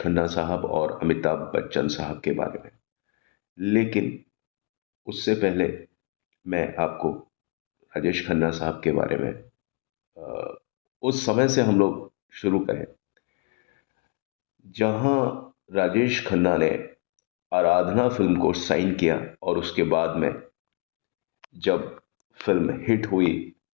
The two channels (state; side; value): quieter; right; 30.3 dB